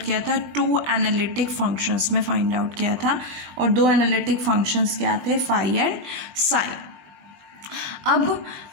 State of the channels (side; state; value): left; late; 20 ms